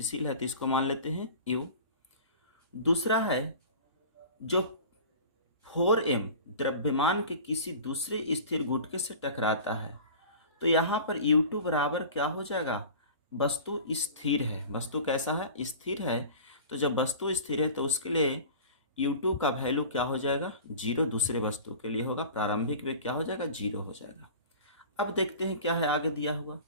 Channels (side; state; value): both; inverted; correlation -0.39